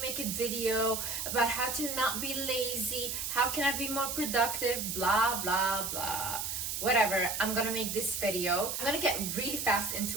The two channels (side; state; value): right; noise; hiss, 3 dB below the sound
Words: make a video about how to not be lazy? How can I be more productive? Blah, blah, blah. Whatever, I'm gonna make this video. I'm gonna get really fast